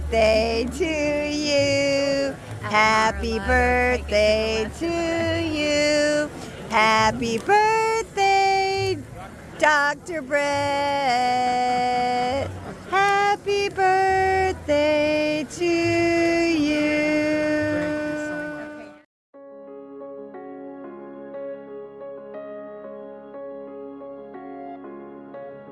to you. Happy birthday to you. Happy birthday, Dr. Brett. Happy birthday to you.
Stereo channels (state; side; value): identical; both; correlation 1.00